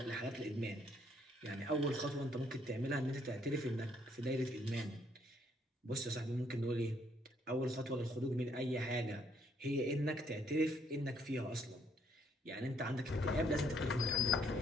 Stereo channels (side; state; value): both; normal; correlation 0.68